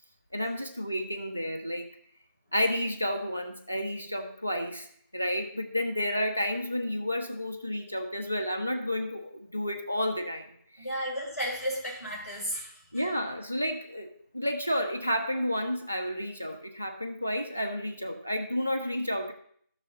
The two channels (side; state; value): both; inverted; correlation -0.82